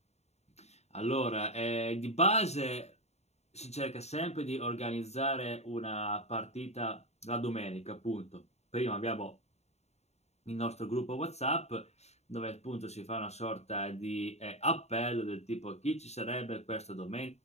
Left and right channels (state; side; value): late; right; 0.32 ms